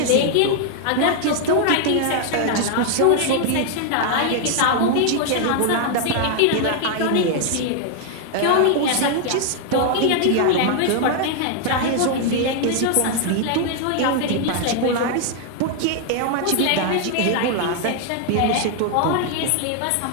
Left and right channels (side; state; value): both; different; correlation 0.00